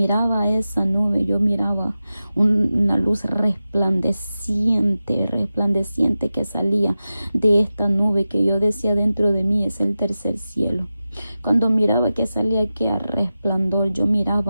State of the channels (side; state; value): both; inverted; correlation -0.94